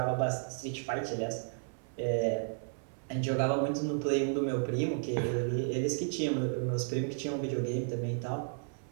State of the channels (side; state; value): left; silent; 56 dB below the other